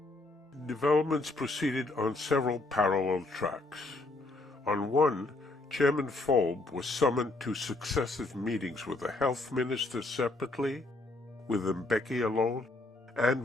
Developments proceeded on several parallel tracks. On one, Chairman Folb was summoned to successive meetings with the health minister separately, with Mbeki alone, and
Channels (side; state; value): right; quieter; 3.0 dB